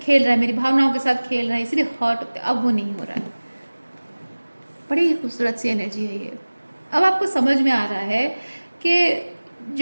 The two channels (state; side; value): inverted; both; correlation -1.00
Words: रहा है, मेरी भावनाओं के साथ खेल रहा है, इसलिए हर्ट होते, अब वो नहीं हो रहा है। बड़ी ही खूबसूरत सी एनर्जी है ये। अब आपको समझ में आ रहा है कि